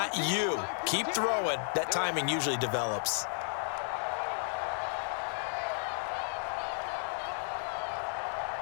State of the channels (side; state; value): right; silent; digital silence